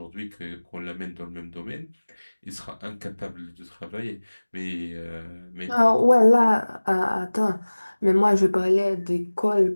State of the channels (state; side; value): inverted; both; correlation -1.00